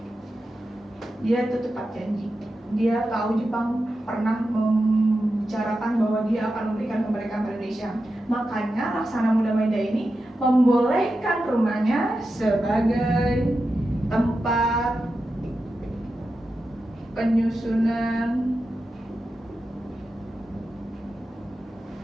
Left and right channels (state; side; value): normal; both; correlation 0.90